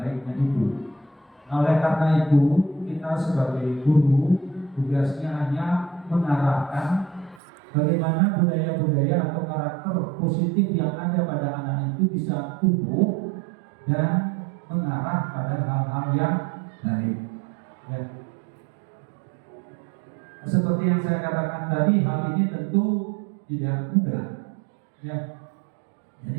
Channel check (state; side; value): drops out; left; at 7.4 s